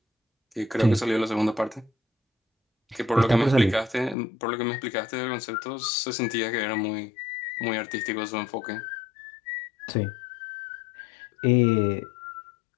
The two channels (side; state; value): right; drops out; at 4.2 s